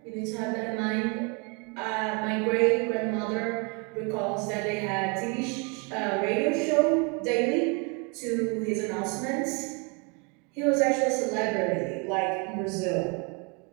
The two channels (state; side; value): quieter; left; 32.0 dB